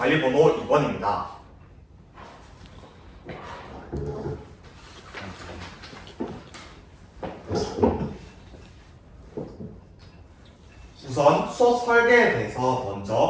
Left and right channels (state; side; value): identical; both; correlation 1.00